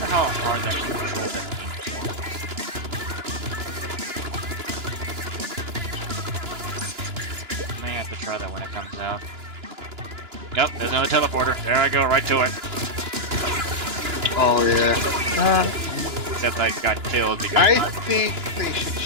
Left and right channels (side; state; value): left; late; 2.9 ms